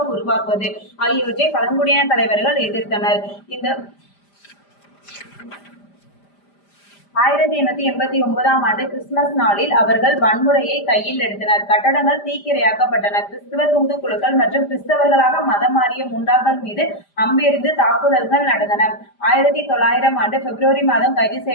உருவாக்குவது ஆகியவற்றை பழங்குடியின தலைவர்கள் எதிர்த்தனர். இந்த 1889 கிறிஸ்துமஸ் நாளில் அவர்கள் வன்முறையை கையில் எடுத்தனர். கட்டடங்கள் தீக்கிரையாக்கப்பட்டன. கிறிஸ்துவ தூதுக்குழுக்கள் மற்றும் கிறிஸ்தவர்களாக மதம் மாறிய முண்டாக்கள் மீது அம்பெறிந்து தாக்குதல்கள் நடந்தன. 1900 பிப்ரவரி மாதம் கைது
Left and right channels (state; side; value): late; right; 5.0 ms